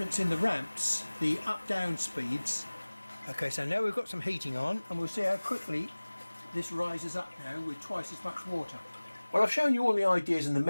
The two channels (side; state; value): both; inverted; correlation -1.00